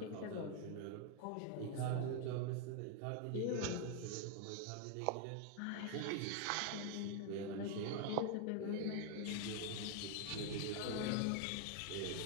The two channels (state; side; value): different; both; correlation 0.00